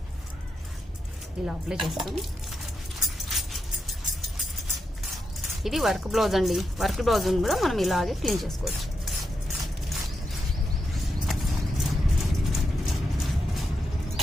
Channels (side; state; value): both; normal; correlation 0.85